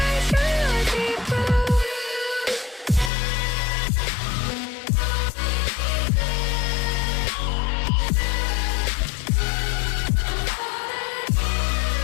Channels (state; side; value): drops out; right; at 3.1 s